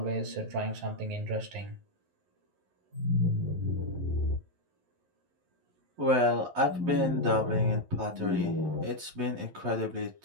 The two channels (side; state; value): left; late; 11 ms